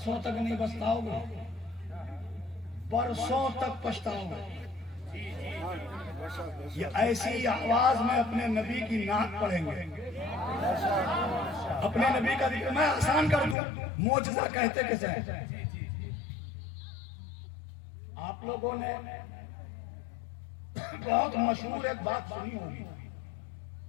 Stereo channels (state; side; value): drops out; right; at 13.6 s